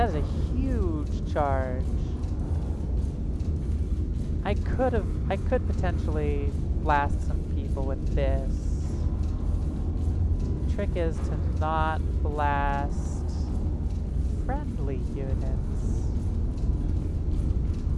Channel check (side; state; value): both; identical; correlation 1.00